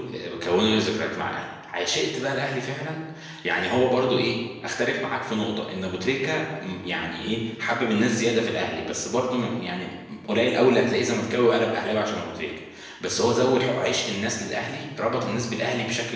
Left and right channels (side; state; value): both; identical; correlation 1.00